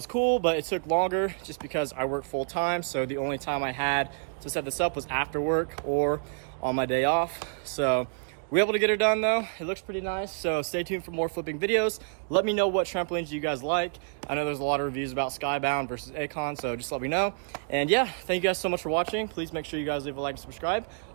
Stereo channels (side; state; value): left; silent; digital silence